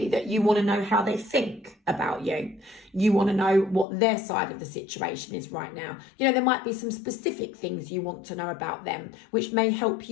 that you want to know how they think about you. You want to know what their side of the situation is right now. You know, there might be some specific things you want to know about them, which may help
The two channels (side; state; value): right; drops out; at 3.9 s